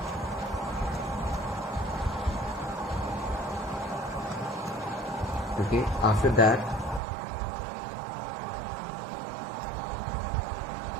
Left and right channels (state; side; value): drops out; left; at 7.0 s